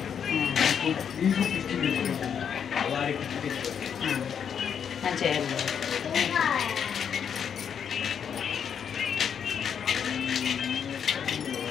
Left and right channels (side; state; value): right; quieter; 7.8 dB